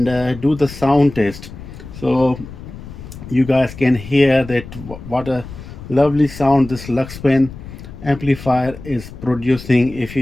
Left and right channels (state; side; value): noise; left; rumble, 14 dB below the sound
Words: do the sound test, so you guys can hear that what a lovely sound this Luxman amplifier is producing if